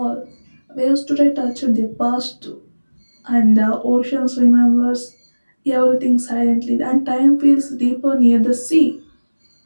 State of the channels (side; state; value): both; inverted; correlation -1.00